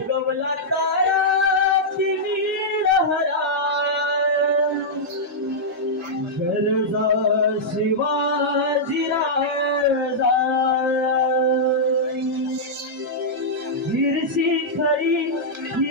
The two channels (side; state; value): both; normal; correlation -0.09